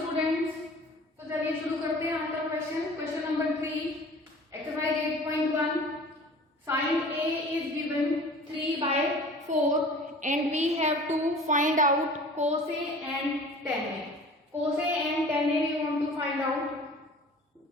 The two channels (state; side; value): normal; both; correlation 0.44